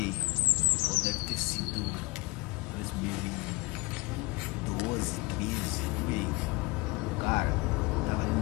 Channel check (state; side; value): quieter; right; 23.6 dB